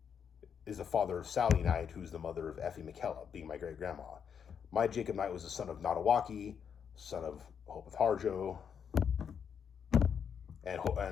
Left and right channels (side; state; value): right; quieter; 7.4 dB